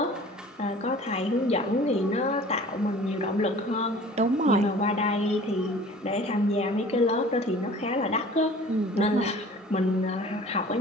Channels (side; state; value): both; normal; correlation 0.46